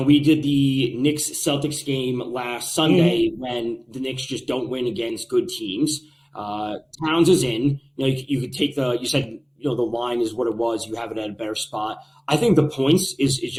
We did the Knicks-Celtics game last Sunday when the Knicks just don't win against good teams. Towns is in. You could take you said, the line is what it was. You have it at a better spot. I think the points is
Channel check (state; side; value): identical; both; correlation 1.00